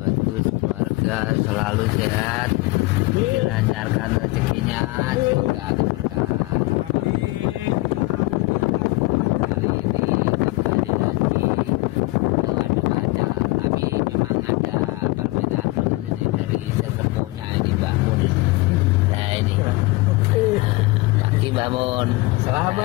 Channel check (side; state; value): right; quieter; 22.0 dB